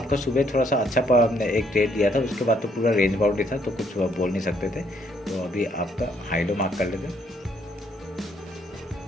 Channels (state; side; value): normal; both; correlation 0.69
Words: सुबह थोड़ा सा अच्छा एक ट्रेड दिया था, उसके बाद तो पूरा रेंज बाउंड ही था, तो कुछ बोल नहीं सकते थे। तो अभी आपका हाई लो मार्क कर लेते हैं।